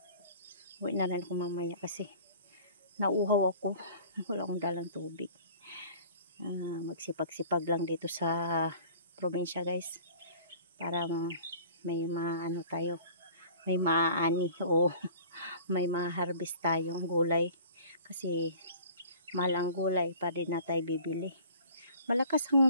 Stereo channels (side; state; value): both; inverted; correlation -0.47